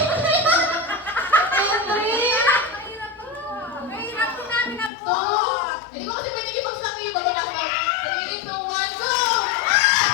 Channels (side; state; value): right; drops out; at 4.9 s